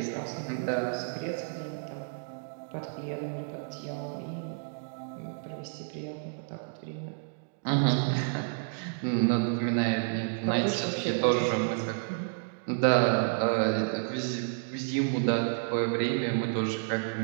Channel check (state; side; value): silent; left; digital silence